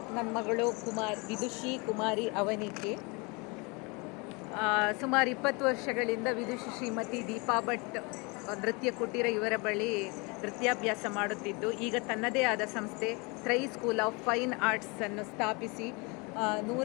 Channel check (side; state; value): right; quieter; 29.0 dB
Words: ನನ್ನ ಮಗಳು ವಿದುಷಿ ಕುಮಾರಿ ಅವನಿಕೆ. ಸುಮಾರು 20 ವರ್ಷಗಳಿಂದ ವಿದುಷಿ ಶ್ರೀಮತಿ ದೀಪಾ ಭಟ್ ನೃತ್ಯ ಕುಟೀರ ಇವರ ಬಳಿ ನೃತ್ಯಾಭ್ಯಾಸ ಮಾಡುತ್ತಿದ್ದು, ಈಗ ತನ್ನದೇ ಆದ ಸಂಸ್ಥೆ ತ್ರೈ ಸ್ಕೂಲ್ ಆಫ್ ಫೈನ್ ಆರ್ಟ್ಸ್ ಅನ್ನು ಸ್ಥಾಪಿಸಿ